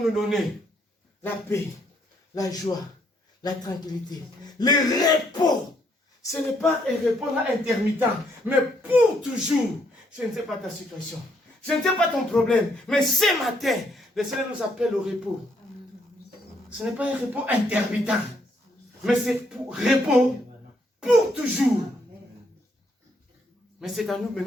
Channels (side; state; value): both; normal; correlation 0.72